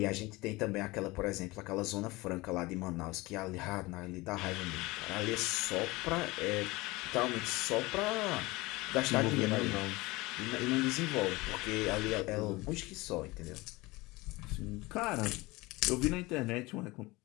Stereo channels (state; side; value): quieter; right; 21.9 dB